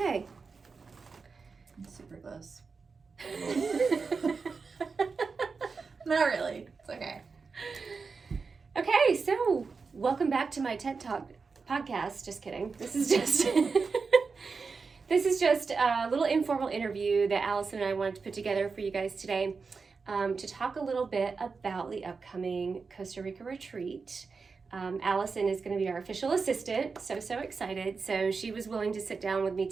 It's super close. Not really. It's okay. Okay. So welcome back to my TED Talk podcast. Just kidding. This is just this is just a little informal interview that Allison and I wanted to put together for you guys today. To talk a little bit about the upcoming Costa Rica retreat. Allison is going to be our official assistant, so excited. So she was willing to sit down with me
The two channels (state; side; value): quieter; left; 4.8 dB